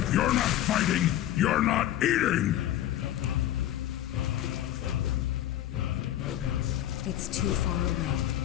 you're not fighting, you're not eating! It's too far away.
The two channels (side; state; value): right; quieter; 12.8 dB